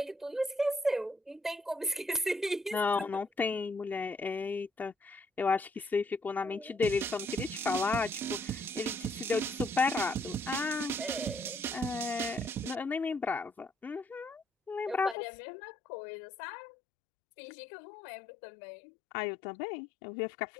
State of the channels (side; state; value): right; drops out; at 15.2 s